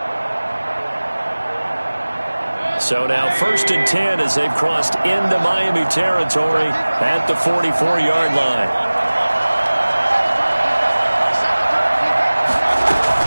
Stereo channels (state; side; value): inverted; both; correlation -1.00